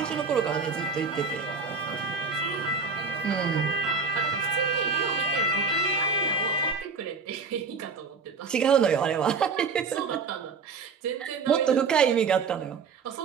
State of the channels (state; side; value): quieter; left; 4.9 dB